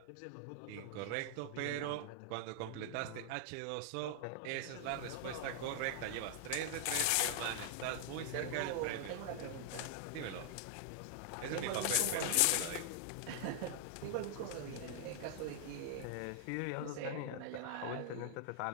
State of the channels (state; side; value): different; both; correlation 0.00